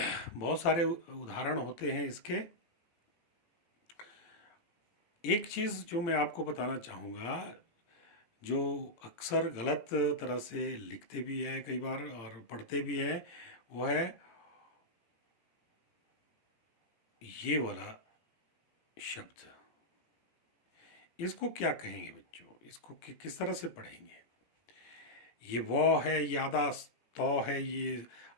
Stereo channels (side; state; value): right; late; 18 ms